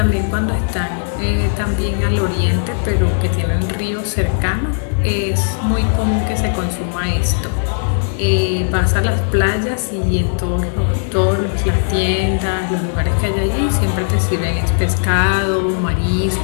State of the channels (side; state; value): right; silent; digital silence